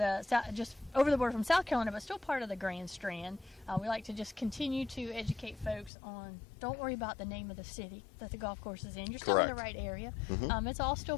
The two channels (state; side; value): drops out; right; at 5.9 s